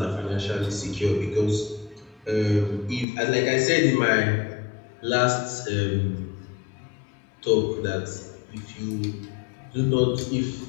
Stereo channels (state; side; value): drops out; right; at 3.1 s